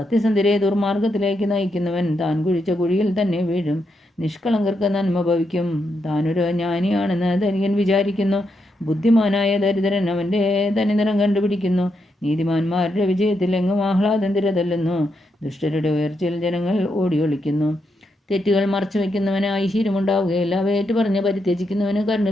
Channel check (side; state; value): both; normal; correlation 0.82